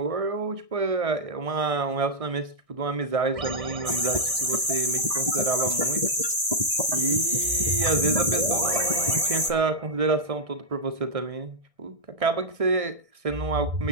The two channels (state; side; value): late; left; 1.6 ms